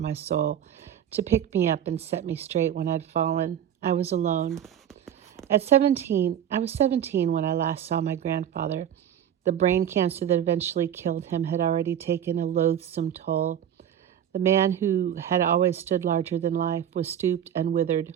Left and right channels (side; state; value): left; quieter; 9.9 dB